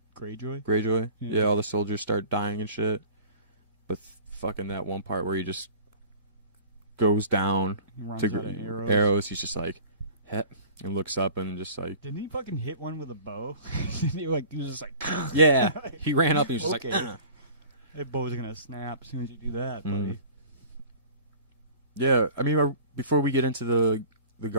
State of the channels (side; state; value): both; inverted; correlation -0.44